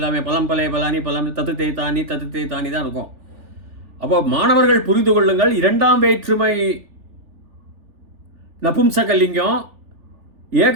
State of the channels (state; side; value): late; left; 3.4 ms